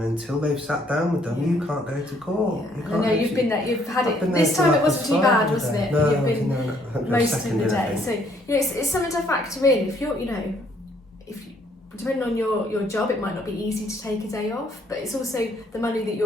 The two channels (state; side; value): normal; both; correlation 0.66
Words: until they've sat down with them, you can't go to court. I know you've been there. You've had it. This time it wasn't too bad, wasn't it? No, you've been most of the day. So it's something to factor in. If you're, depending on your job, it might not be easy to take a day off, but it's also the money that